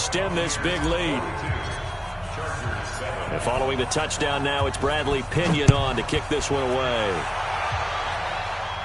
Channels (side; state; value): both; identical; correlation 1.00